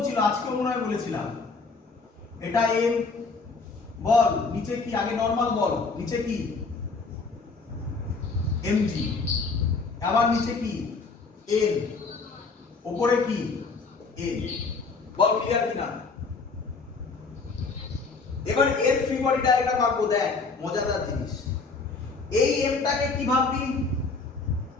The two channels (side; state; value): right; quieter; 4.3 dB